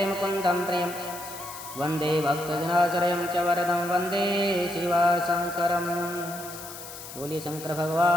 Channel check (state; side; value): noise; left; hiss, 13 dB below the sound